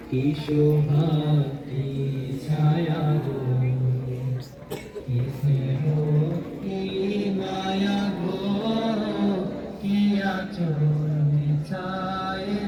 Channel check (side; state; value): both; identical; correlation 1.00